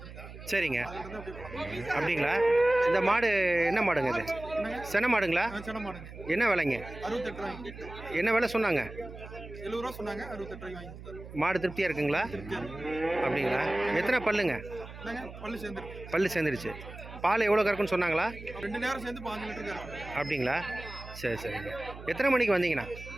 சரிங்க. அப்படிங்களா? இந்த மாடு என்ன மாடுங்க இது? சென மாடுங்களா? என்ன விலைங்க? என்ன விலை சொன்னாங்க? 70 ரூபா சொன்னாங்க. 68 ரூபாய்க்கு வாங்கி. மாடு திருப்தியாக இருக்குங்களா? அப்படிங்களா? எத்தனை பல்லுங்க? பல்லு சேர்ந்துருச்சு. பால் எவ்வளோ கறக்குன்னு சொன்னாங்களா? 2 நேரம் சேர்ந்து 5 லிட்டர் கறக்கும். அப்படிங்களா? சரி சரிங்க. எத்தனை மணிக்கு வந்தீங்கண்ணா?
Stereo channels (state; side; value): noise; right; hum, 14 dB below the sound